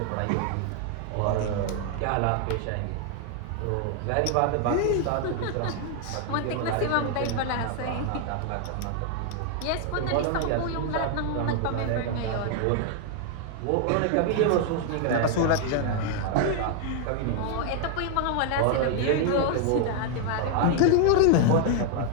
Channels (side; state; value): both; different; correlation 0.00